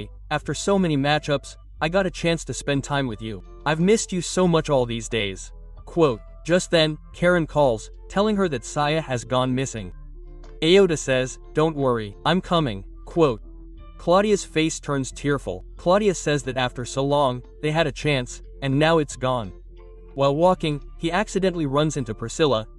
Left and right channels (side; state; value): both; identical; correlation 1.00